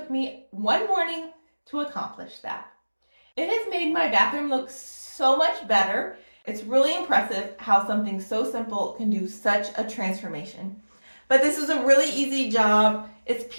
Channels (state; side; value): inverted; both; correlation -1.00